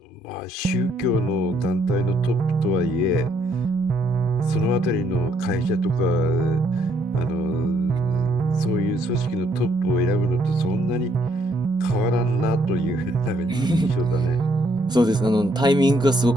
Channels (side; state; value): both; normal; correlation 0.70